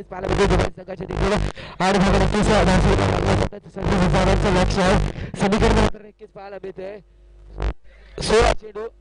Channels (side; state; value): both; identical; correlation 1.00